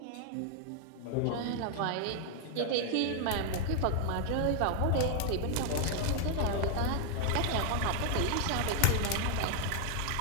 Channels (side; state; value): both; different; correlation 0.00